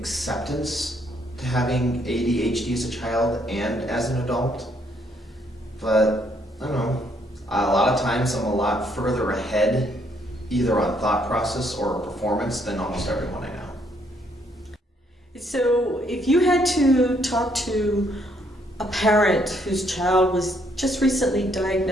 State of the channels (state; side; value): normal; both; correlation 0.70